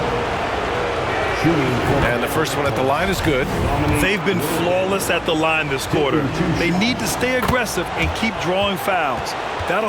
And the first one at the line is good. They've been flawless at the line this quarter. They need to stay aggressive and keep drawing fouls. That'll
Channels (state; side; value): identical; both; correlation 1.00